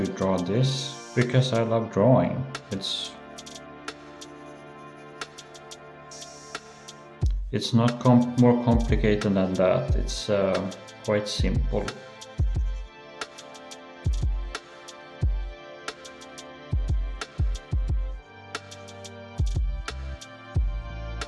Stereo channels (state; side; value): identical; both; correlation 1.00